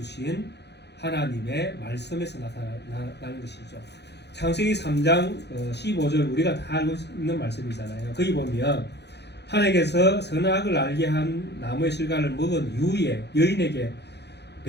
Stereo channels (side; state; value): right; late; 0.49 ms